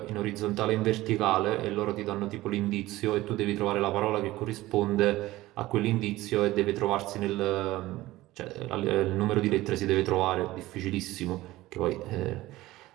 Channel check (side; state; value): left; quieter; 17.4 dB